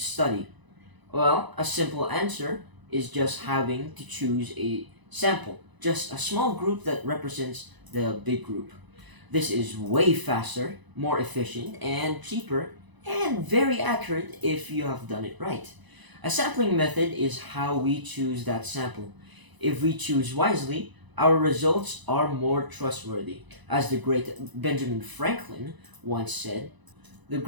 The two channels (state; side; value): late; left; 1.0 ms